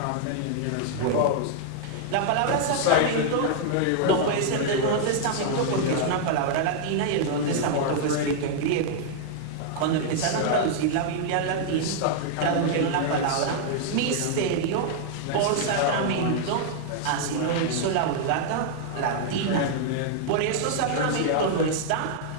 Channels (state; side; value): different; both; correlation -0.01